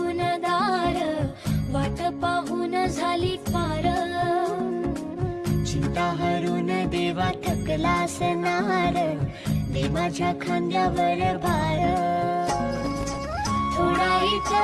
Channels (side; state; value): both; identical; correlation 1.00